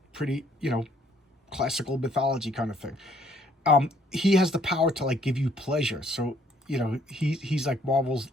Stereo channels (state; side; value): normal; both; correlation 0.64